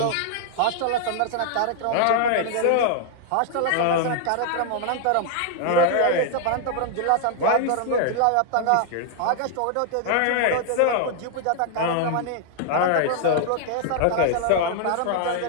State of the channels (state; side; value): different; both; correlation 0.00